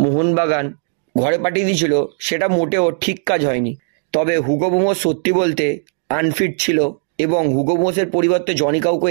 মোহনবাগান ঘরে পাঠিয়ে দিয়েছিল, সেটা মোটেও ঠিক কাজ হয়নি। তবে হুগো বুমোস সত্যি বলতে আনফিট ছিল এবং হুগো বুমোসের পরিবর্তে জনি কাউকে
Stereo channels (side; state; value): left; silent; 66 dB below the other